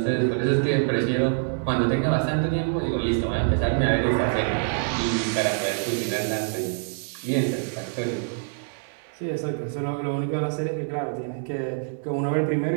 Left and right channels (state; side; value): silent; left; digital silence